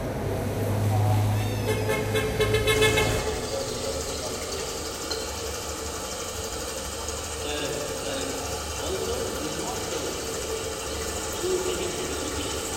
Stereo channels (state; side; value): identical; both; correlation 1.00